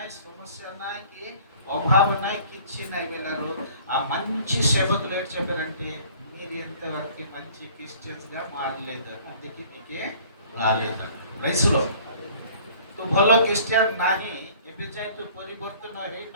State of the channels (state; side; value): inverted; both; correlation -0.52